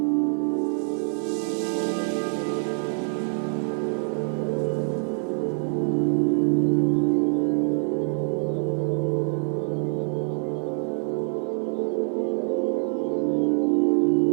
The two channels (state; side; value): silent; left; 62 dB below the other